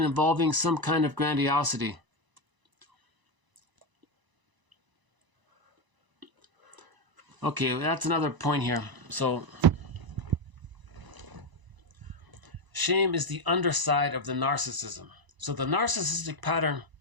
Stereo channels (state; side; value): late; left; 1.0 ms